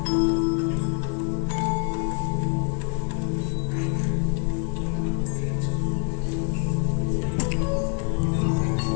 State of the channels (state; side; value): quieter; right; 39.4 dB